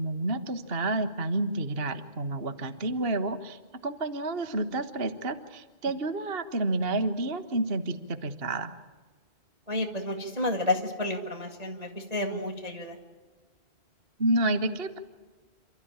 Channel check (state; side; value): late; left; 1.9 ms